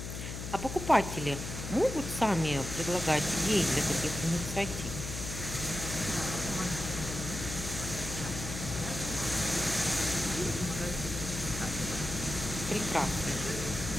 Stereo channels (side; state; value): left; noise; hum, 7 dB below the sound